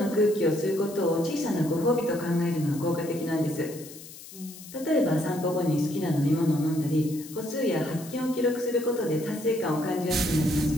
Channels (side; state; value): left; noise; hiss, 16 dB below the sound